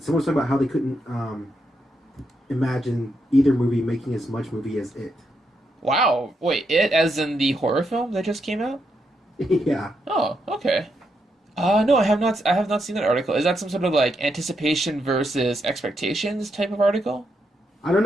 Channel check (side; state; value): both; normal; correlation 0.81